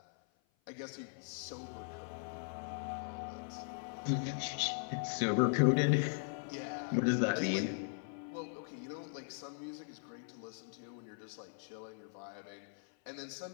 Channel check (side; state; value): right; silent; 52 dB below the other